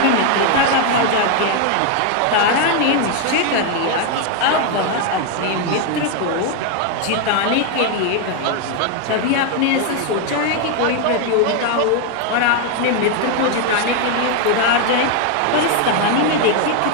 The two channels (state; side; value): different; both; correlation 0.01